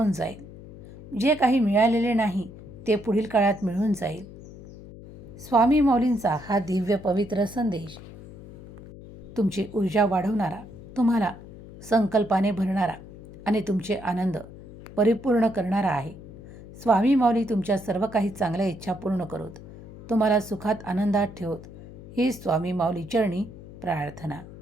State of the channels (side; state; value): left; noise; hum, 16 dB below the sound